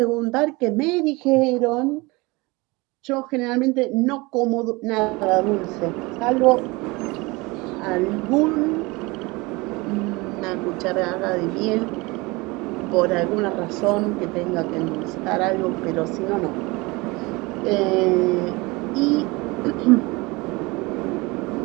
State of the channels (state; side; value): quieter; left; 24.2 dB